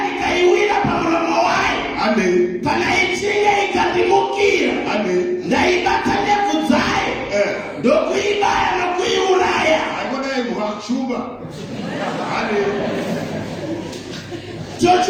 ndikaiwira pamuromo wayo. Kana ichinge ikandimukira ndaibata ndebvu dzayo ndokuibaya nokuiuraya.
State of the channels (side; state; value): both; identical; correlation 1.00